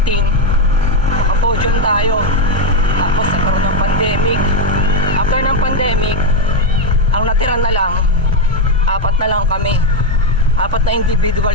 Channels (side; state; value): both; normal; correlation 0.06